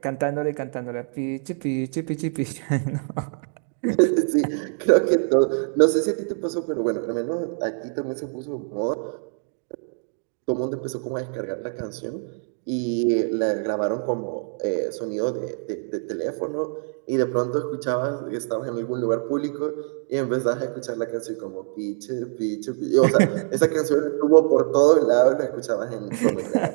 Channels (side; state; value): left; silent; 62 dB below the other